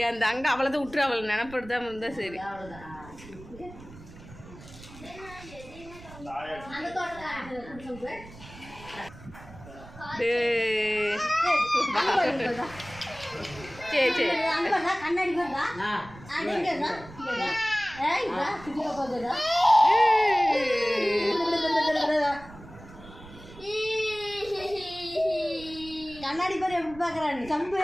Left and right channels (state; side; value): noise; right; rumble, 18 dB below the sound